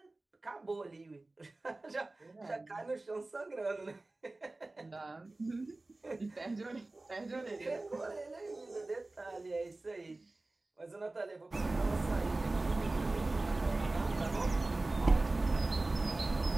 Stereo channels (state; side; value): quieter; left; 3.0 dB